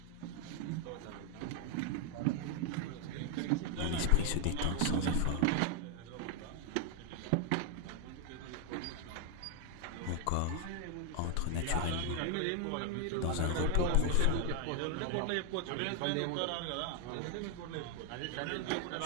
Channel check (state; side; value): different; both; correlation 0.00